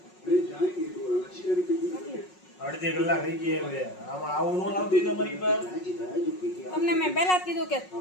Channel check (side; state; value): right; late; 5.5 ms